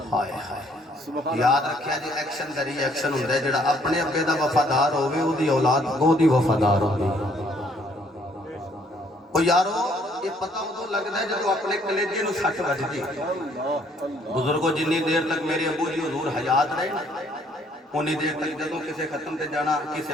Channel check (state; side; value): normal; both; correlation 0.64